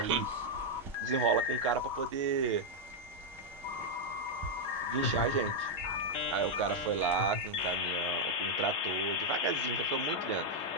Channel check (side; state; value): both; normal; correlation -0.01